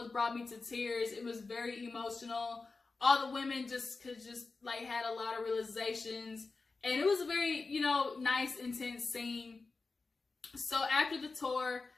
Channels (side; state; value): right; quieter; 4.0 dB